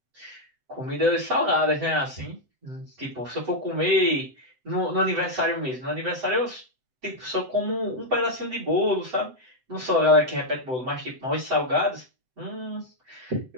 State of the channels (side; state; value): left; late; 7.9 ms